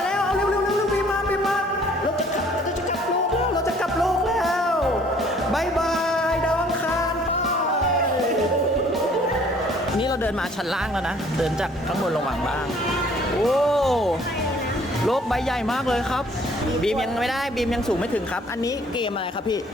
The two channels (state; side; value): normal; both; correlation 0.57